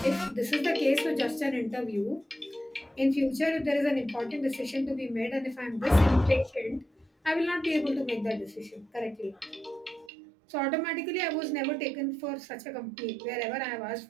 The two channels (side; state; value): left; drops out; at 10.1 s